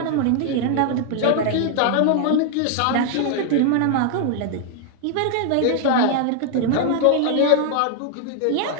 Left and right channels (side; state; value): both; different; correlation 0.00